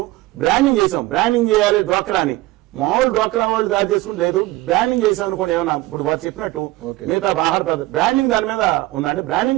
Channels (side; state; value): left; quieter; 18.5 dB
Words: బ్రాండింగ్ చేసాం. బ్రాండింగ్ చేయాలి డ్వాక్రా అని. మామూలు డ్వాక్రా వాళ్ళు తయారు చేసుకుంటే లేదు, బ్రాండింగ్ చేసాం అనుకోండి. ఏమన్నా ఇప్పుడు వారు చెప్పినట్టు మిగతా ఆహార బ్రాండింగ్ దాని మీద ఉందంటే